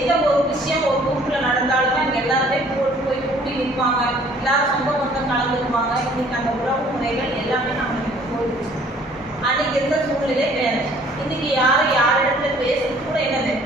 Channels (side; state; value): both; normal; correlation 0.56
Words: ஒரு விஷயம் ஒரு குரூப்ல நடந்தாலுமே அங்க எல்லாருமே போய் கூடி நிற்பாங்க, எல்லாரும் சொந்த பந்தம் கலந்துக்குவாங்க. இன்னைக்கு அந்த உறவு முறைகள் எல்லாமே நம்மளுக்கு போயிடுச்சு. அன்னைக்கு இருந்த சூழ்நிலை வேற. இன்னைக்கு யாரும் யாரிடத்துல பேசுறது கூட என்னது